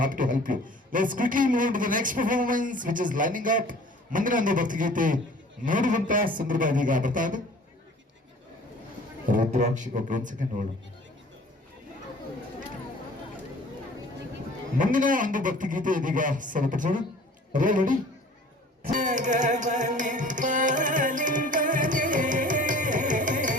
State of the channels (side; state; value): both; normal; correlation 0.48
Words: to help you. Let's quickly move to the next performance, which is lining up. ಮುಂದಿನ ಒಂದು ಭಕ್ತಿಗೀತೆ ನೋಡುವಂತ ಸಂದರ್ಭ ಇದೀಗ ಬರ್ತಾ ಇದೆ. ರುದ್ರಾಕ್ಷಿ ಒಂದು ಸೆಕೆಂಡ್ ನೋಡು. ಮುಂದಿನ ಒಂದು ಭಕ್ತಿಗೀತೆ ಇದೀಗ ಸರಿಪಡಿಸೋಣ. ರೆಡಿ? ಜಗವನೆ ಪಾಲಿಂಪನೆ